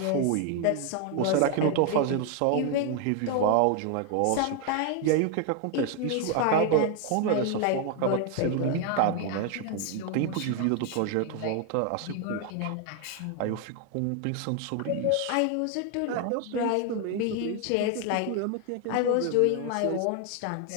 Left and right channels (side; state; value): both; different; correlation 0.00